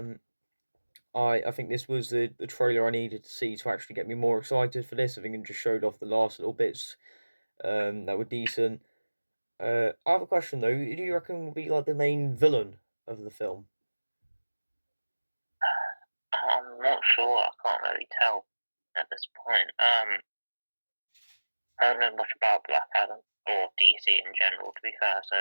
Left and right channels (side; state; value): both; inverted; correlation -1.00